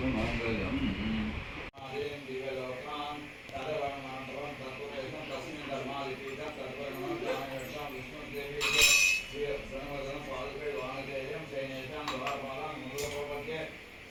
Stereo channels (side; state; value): both; identical; correlation 1.00